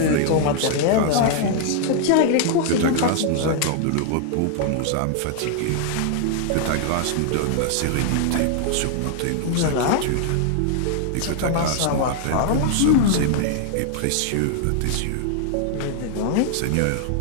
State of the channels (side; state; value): both; different; correlation -0.01